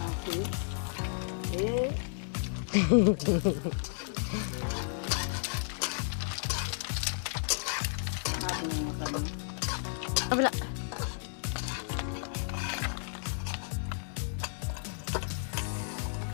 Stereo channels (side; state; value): right; silent; 56 dB below the other